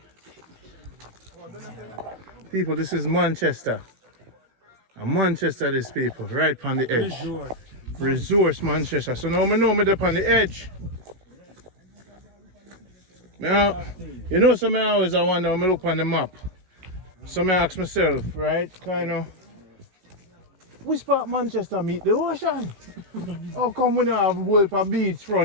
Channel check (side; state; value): left; late; 16 ms